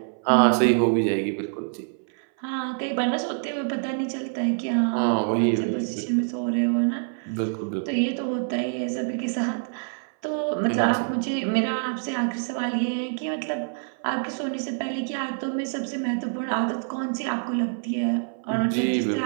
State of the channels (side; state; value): left; silent; 59 dB below the other